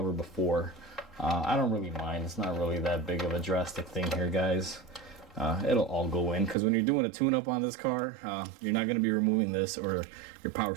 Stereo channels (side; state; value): left; drops out; at 6.6 s